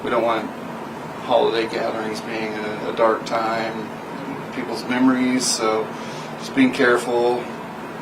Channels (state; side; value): identical; both; correlation 1.00